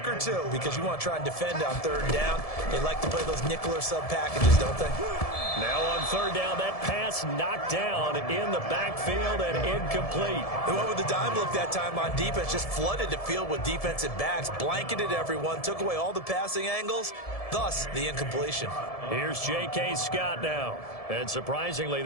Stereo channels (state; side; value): late; right; 1.7 ms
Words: or two because you want to try and defend on 3rd down. They like to play those nickel or sub packages, don't they? Now on 3rd down, that pass knocked down in the backfield and incomplete. They went with the dime look that time on defense, just flooded the field with defensive backs, blanketed everyone, took away all the passing angles, thus the incompletion. Here's J.K. Scott now. And surprisingly,